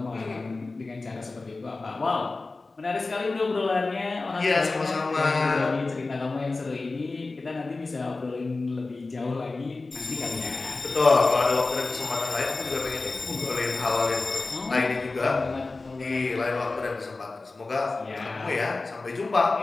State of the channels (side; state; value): right; quieter; 3.5 dB